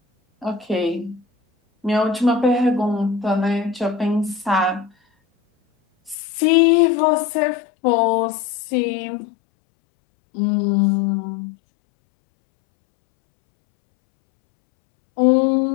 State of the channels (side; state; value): right; drops out; at 6.2 s